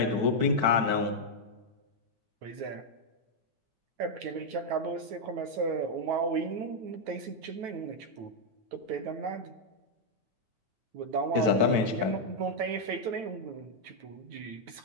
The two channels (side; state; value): left; late; 9.2 ms